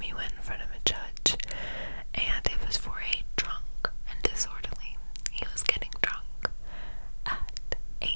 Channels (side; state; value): both; inverted; correlation -1.00